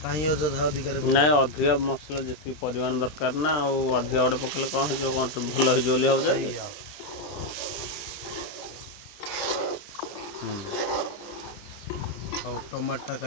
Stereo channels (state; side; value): late; right; 20 ms